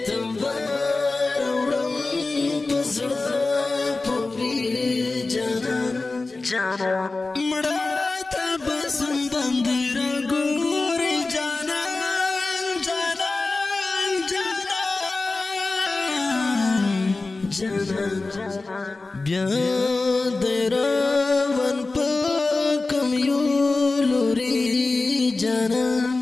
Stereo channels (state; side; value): quieter; right; 3.5 dB